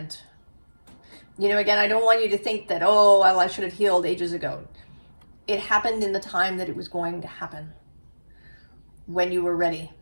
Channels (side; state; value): both; inverted; correlation -1.00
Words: You know, again, I don't want you to think that, oh, well, I should have healed ages ago. It happened in the time that it was going to happen. When you were ready.